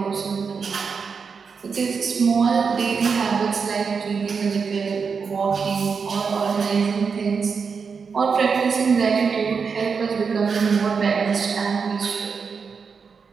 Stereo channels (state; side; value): quieter; left; 5.6 dB